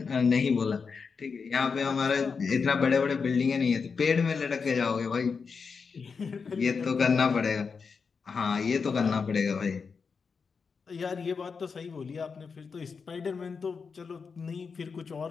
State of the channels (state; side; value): quieter; right; 5.4 dB